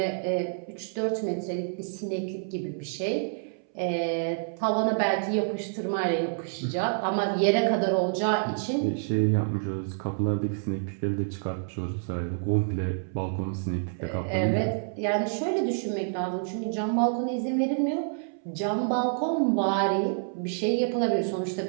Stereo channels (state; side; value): silent; left; 59 dB below the other